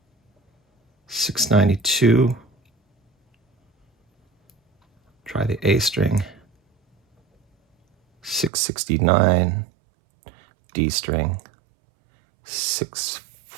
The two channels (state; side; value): drops out; left; at 8.5 s